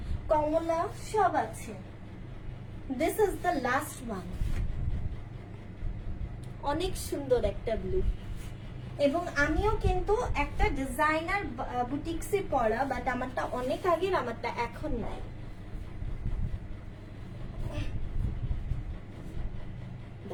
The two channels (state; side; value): identical; both; correlation 1.00